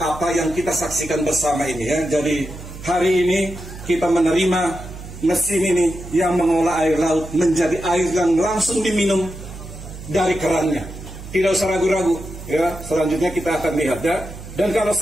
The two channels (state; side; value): noise; right; hum, 13 dB below the sound